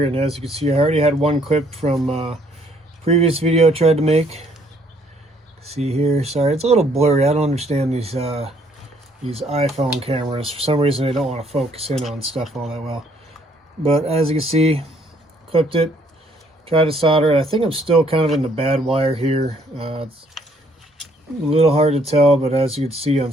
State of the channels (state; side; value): normal; both; correlation 0.65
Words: and as you can see, I already had one clip from previous video I tried to make. See here, sorry, it's a little blurry. I don't understand these iPhone cameras. For some reason, they don't want to focus in on stuff all that well. But as you can see, clipped it. Tried to solder it. I think I'm still kind of in the bad wire here. It's a little hard to tell, but as you can see on